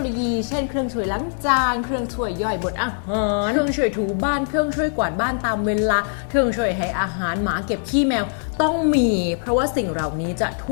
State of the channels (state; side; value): silent; right; digital silence